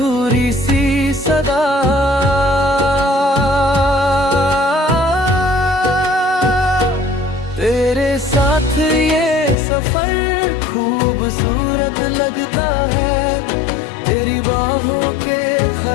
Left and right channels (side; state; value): right; drops out; at 9.6 s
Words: सी सदा। तेरे साथ ये सफर खूबसूरत लगता है। तेरी बाहों के